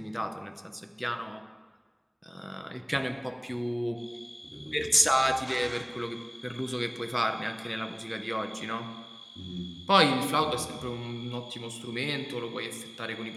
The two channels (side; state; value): both; identical; correlation 1.00